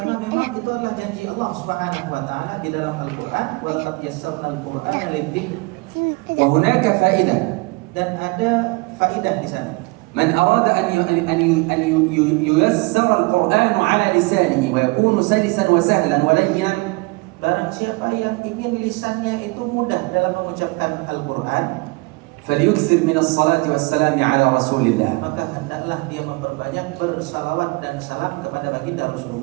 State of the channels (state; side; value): quieter; left; 26.4 dB